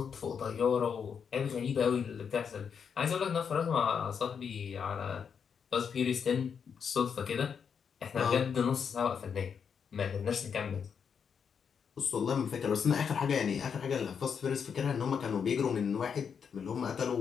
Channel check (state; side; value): quieter; right; 6.8 dB